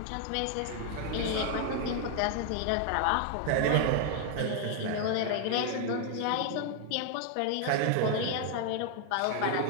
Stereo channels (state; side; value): different; both; correlation 0.00